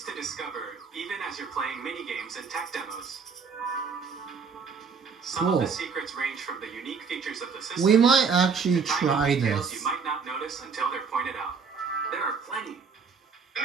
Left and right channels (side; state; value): left; quieter; 5.6 dB